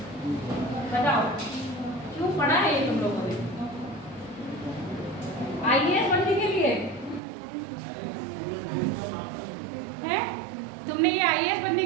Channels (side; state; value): left; drops out; at 7.2 s